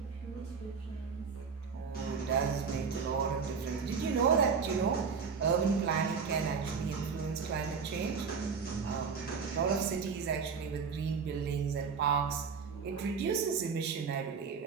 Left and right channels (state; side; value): quieter; left; 5.7 dB